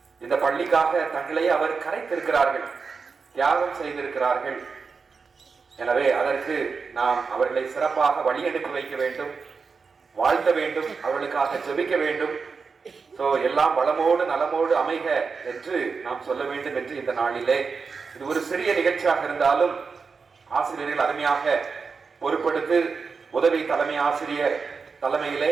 இந்த பள்ளிக்காக தங்களை அவர் கரைத்திருக்கிறார்கள், தியாகம் செய்திருக்கிறார்கள். எனவே அதற்கு நாம் அவர்களை சிறப்பாக வழி அனுப்பி வைக்க வேண்டும், வாழ்த்த வேண்டும், அவர்களுக்காக ஜெபிக்க வேண்டும். எல்லாம் வளமோடு நலமோடு அமைக என்று நாம் சொல்ல வேண்டும் என்று இந்த நாளிலே, இது ஒரு சிறிய நிகழ்ச்சியாக இருந்தாலும் ஆசிரியர்கள் அருமையாக பொறுப்படுத்து உதவி தலைமை ஆசிரியர் தலைமையிலே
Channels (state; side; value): quieter; left; 5.1 dB